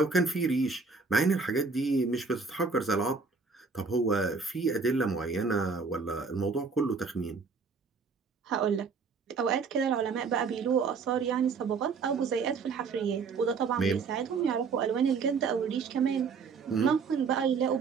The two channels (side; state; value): left; quieter; 4.9 dB